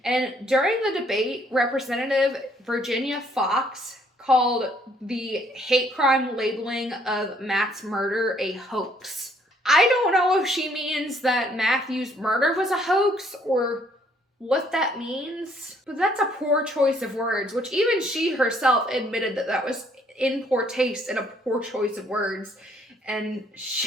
And during the debate, Representative Virginia Foxx called the hate crime labeling of Matt's murder a hoax. I don't know if she means that Matthew's murder was a hoax or what that means, but that's a poor choice of words, which even she herself admitted that was in poor taste and a poor choice of words. And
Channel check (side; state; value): both; normal; correlation 0.65